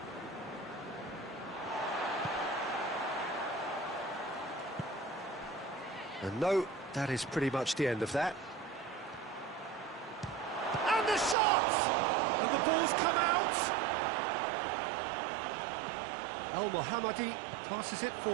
And no, that is pretty much the end of that. And the shot! And the ball's come out! Al-Mohammadi passes it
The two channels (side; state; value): left; drops out; at 11.4 s